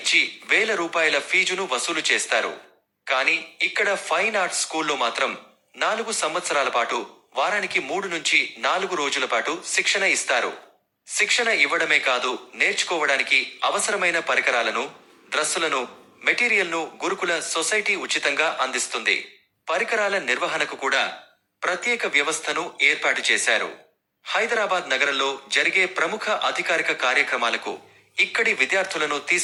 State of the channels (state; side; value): identical; both; correlation 1.00